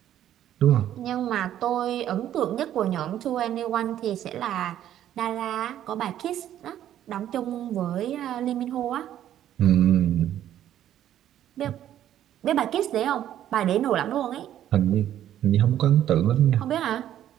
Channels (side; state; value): left; quieter; 11.5 dB